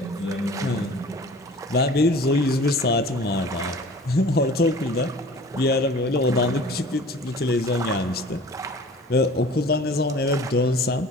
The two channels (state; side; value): normal; both; correlation 0.44